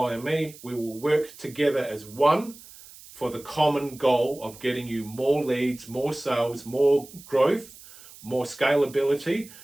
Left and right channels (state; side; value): noise; right; hiss, 20 dB below the sound